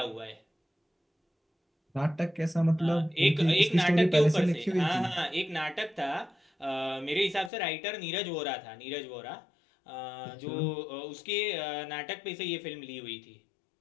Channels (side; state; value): right; drops out; at 7.5 s